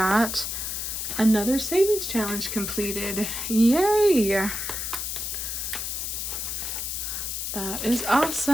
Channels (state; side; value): noise; left; hiss, 3 dB below the sound